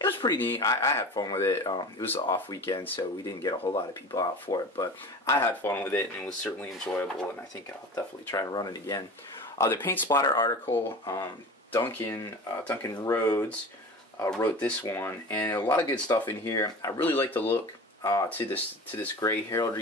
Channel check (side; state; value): both; normal; correlation 0.35